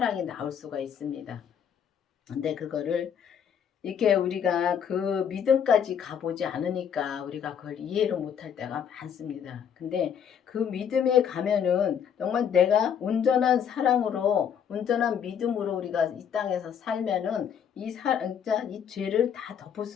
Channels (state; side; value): quieter; right; 8.1 dB